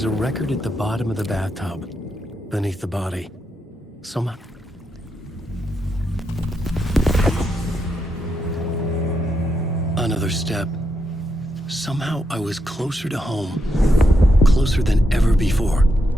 a record at the bottom of the bathtub, beneath the body. Somehow... Another step. Somehow I was closer to home. Closer than ever before.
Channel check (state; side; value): normal; both; correlation 0.82